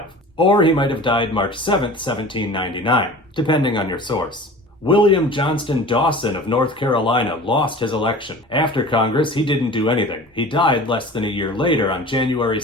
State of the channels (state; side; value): normal; both; correlation 0.40